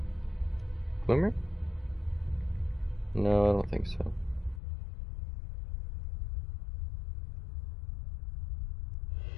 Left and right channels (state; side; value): drops out; right; at 4.6 s